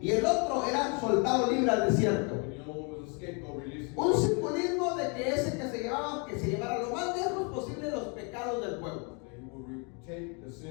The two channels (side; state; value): right; quieter; 35.0 dB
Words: el otro era soltado libre al desierto. Un simbolismo de que ese que se llevara lo más lejos posible los pecados del pueblo.